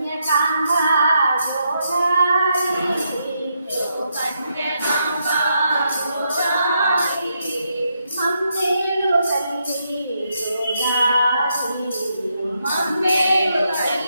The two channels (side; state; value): both; inverted; correlation -0.80